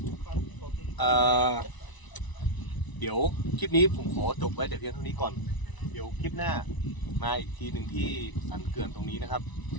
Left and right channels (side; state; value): right; late; 1.0 ms